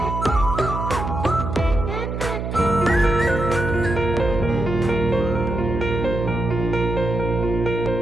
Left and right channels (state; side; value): noise; right; hum, 4 dB below the sound